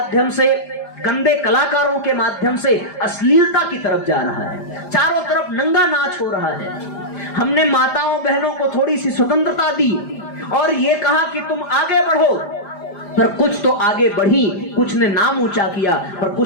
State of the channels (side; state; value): right; late; 5.0 ms